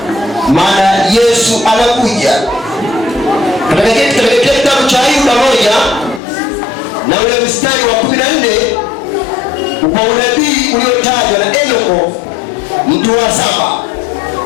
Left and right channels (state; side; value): drops out; right; at 6.2 s